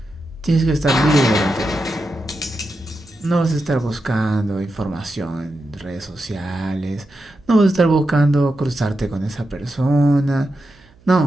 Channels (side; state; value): right; noise; hum, 29 dB below the sound